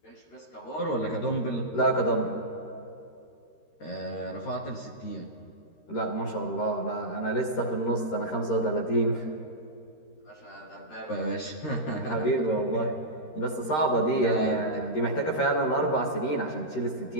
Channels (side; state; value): right; late; 13 ms